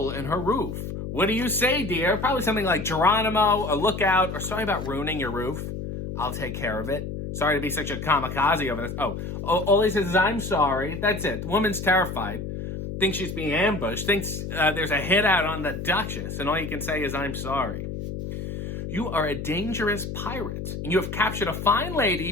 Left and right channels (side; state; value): left; noise; hum, 6 dB below the sound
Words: in her roof. What do you say, dear? Probably something like Geronimo, a lookout, or sorry about ruining your roof. I'll take care of it. Sorry to be such a kamikaze over this. All he says is, I'm sorry. That's it. The woman's terrified. Thinks she's being ambushed. Thinks there's a hit out on the Duchess. And all you can say is, I'm sorry. You are a dangerous pirate. And you have captured a fine